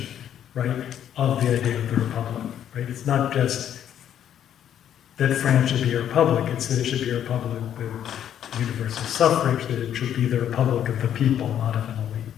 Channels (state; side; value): quieter; right; 10.0 dB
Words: right, of the idea of the republic, right? It's not just that France should be a republic, it's that it should be a republic with universal suffrage, that it should be the republic of the people, not of an elite.